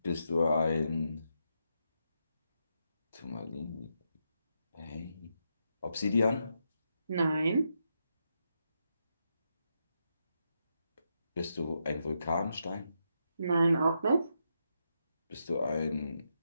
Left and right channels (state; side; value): inverted; both; correlation -0.82